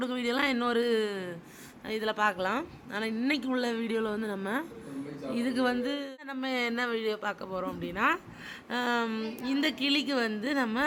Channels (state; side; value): identical; both; correlation 1.00